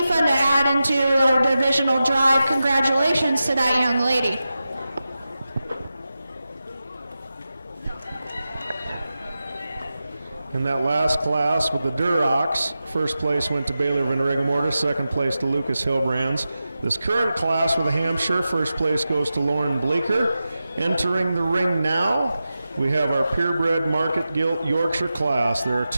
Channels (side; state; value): both; inverted; correlation -0.92